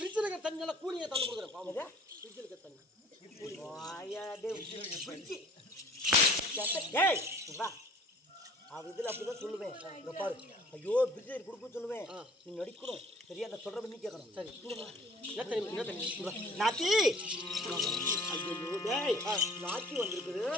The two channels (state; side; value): normal; both; correlation 0.50